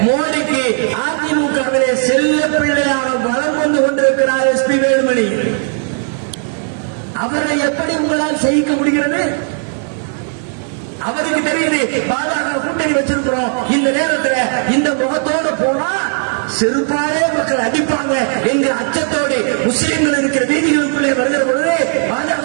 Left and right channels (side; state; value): left; silent; 55 dB below the other